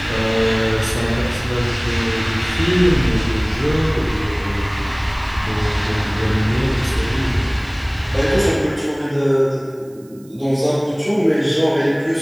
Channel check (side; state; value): right; noise; hiss, 29 dB below the sound